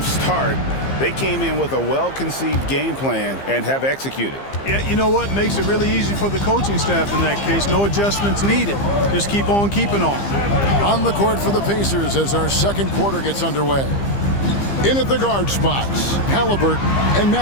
start. They came in with a well-conceived game plan and have executed. Yeah, you know what? Makes it really easy for the coaching staff in that case. No adjustments needed. Just keep on keeping on. On the court for the Pacers as our second quarter gets underway. In at the guard spots, Halliburton and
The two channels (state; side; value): late; right; 15 ms